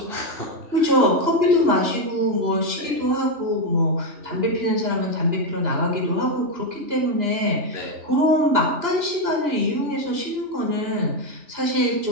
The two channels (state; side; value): late; left; 2.9 ms